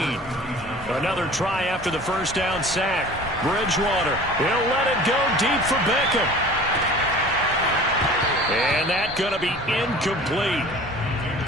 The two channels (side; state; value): both; normal; correlation 0.43